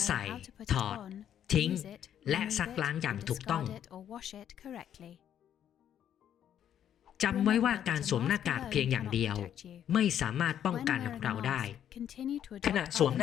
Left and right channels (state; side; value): quieter; right; 9.9 dB